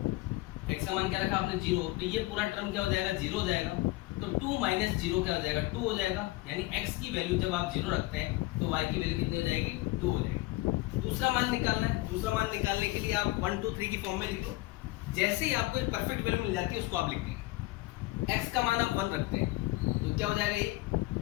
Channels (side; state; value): right; quieter; 19.8 dB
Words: x का मान क्या रखा आपने 0, तो ये पूरा टर्म क्या हो जाएगा, 0 हो जाएगा। तो 2 माइनस 0 क्या हो जाएगा, 2 हो जाएगा। यानी x की वैल्यू जब आप 0 रखते हैं तो y की वैल्यू कितनी हो जाएगी, 2 हो जाएगी। दूसरा मान निकालना है, दूसरा मान निकालने के लिए आप 1 2 3 की फॉर्म में लिख लो। जैसे ही आपको एक परफेक्ट वैल्यू मिल जाती है उसको आप लिख देंगे। x का मान आप 1 रखते हैं तो क्या हो जाएगा, ये